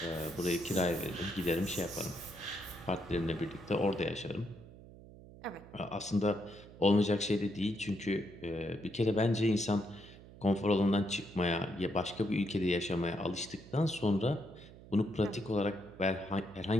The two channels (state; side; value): noise; right; hum, 18 dB below the sound